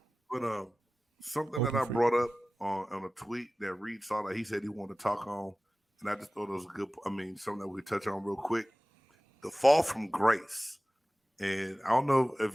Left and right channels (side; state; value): both; normal; correlation 0.97